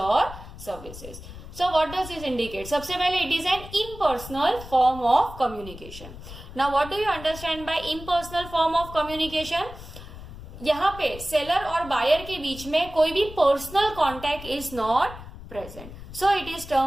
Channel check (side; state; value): left; noise; rumble, 14 dB below the sound